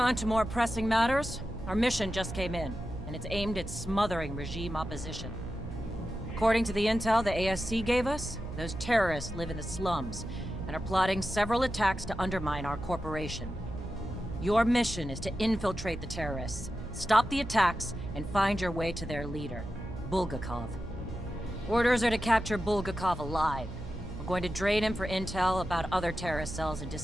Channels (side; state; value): right; noise; hum, 10 dB below the sound